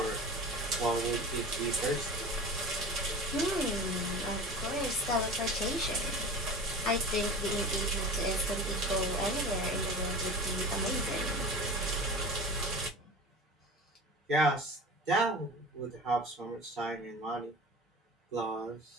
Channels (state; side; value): normal; both; correlation 0.36